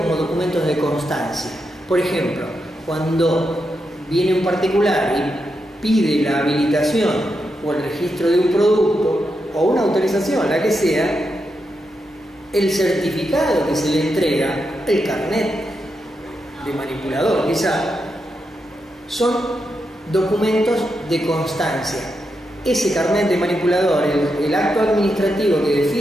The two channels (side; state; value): both; normal; correlation 0.85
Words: documentos de constancia. Por ejemplo, cuando viene un particular y pide la habilitación o el registro de un producto o una autorización, la que sea, el certificado que se le entrega, el carnet de manipulador, quizá, son documentos de constancia. Ese carnet de manipulador, el acto administrativo que